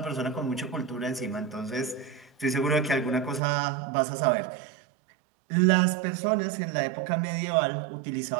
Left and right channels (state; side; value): drops out; left; at 3.4 s